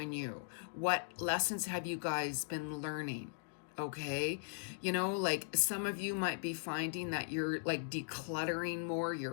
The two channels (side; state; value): right; silent; digital silence